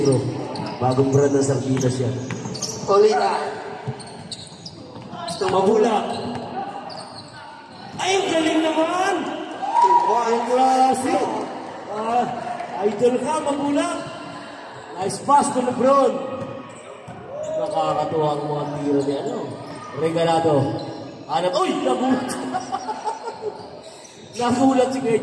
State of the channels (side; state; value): both; identical; correlation 1.00